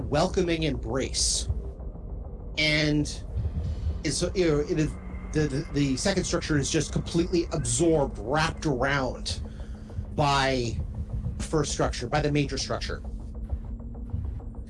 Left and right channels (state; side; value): identical; both; correlation 1.00